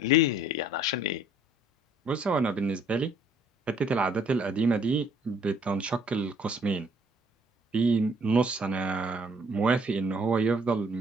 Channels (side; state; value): both; normal; correlation 0.61